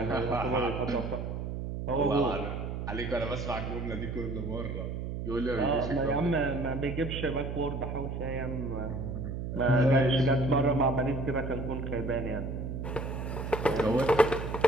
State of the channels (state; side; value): noise; right; hum, 4 dB below the sound